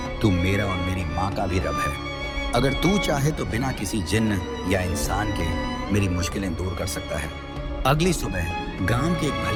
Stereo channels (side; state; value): both; identical; correlation 1.00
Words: तू मेरा और मेरी माँ का भी रब है। अगर तू चाहे तो बिना किसी जिन्न या इंसान के मेरी मुश्किलें दूर कर सकता है। अगली सुबह गांव के एक